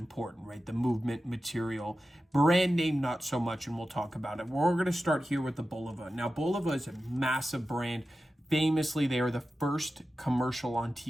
right? The movement, material, brand name, not so much, and we'll talk about it. We're going to start here with the Boliva. Now, Boliva is a massive brand. Famously, they are the first commercial on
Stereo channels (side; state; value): both; normal; correlation 0.93